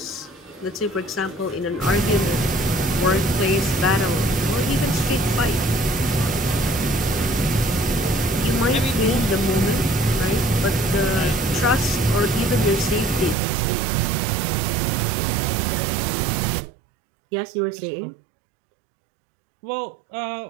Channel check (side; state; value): left; drops out; at 13.4 s